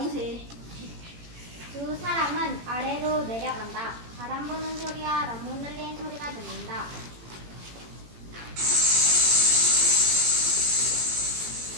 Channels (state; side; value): late; left; 18 ms